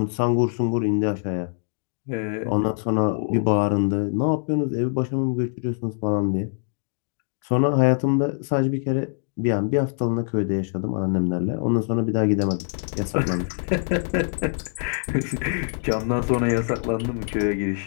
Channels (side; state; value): right; silent; digital silence